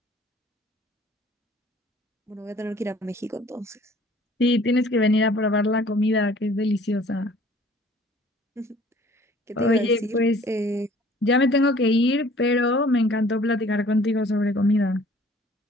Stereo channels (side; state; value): both; normal; correlation 0.54